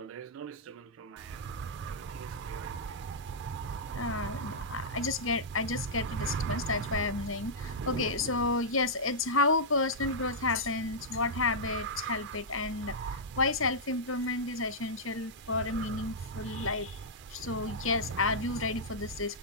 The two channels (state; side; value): normal; both; correlation -0.10